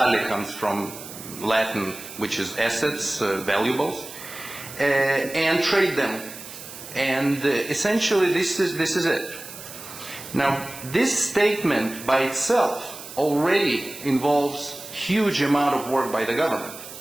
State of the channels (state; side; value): noise; right; hiss, 13 dB below the sound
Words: comes from Latin, which is assets, valuables, and trade them. And essentially, this is it. Now, this statement by itself already involves huge amount of work by the government,